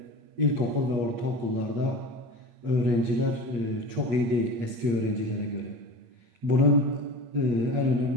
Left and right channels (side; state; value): left; late; 8.5 ms